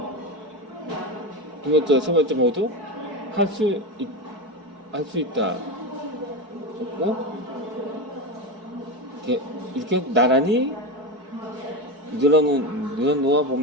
두 번째, 세 번째 모두 할 수 있다 하고 이렇게 나란히 늘어놓아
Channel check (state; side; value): late; left; 4.6 ms